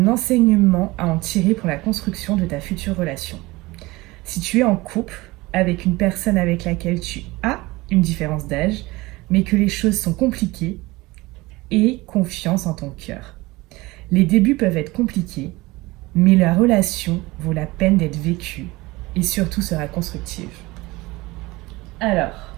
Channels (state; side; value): quieter; left; 21.2 dB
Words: enseignement à en tirer pour la construction de ta future relation. Si tu es en couple avec une personne avec laquelle tu as une différence d'âge, mais que les choses sont compliquées, aie confiance en ton cœur. Les débuts peuvent être compliqués, mais la relation vaut la peine d'être vécue et surtout sera constructive. Alors,